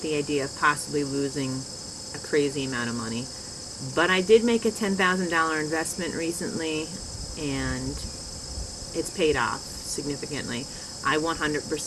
the idea of possibly losing a crazy amount of money. But I did make a $10,000 investment recently, and it's paid off significantly. I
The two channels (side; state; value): both; identical; correlation 1.00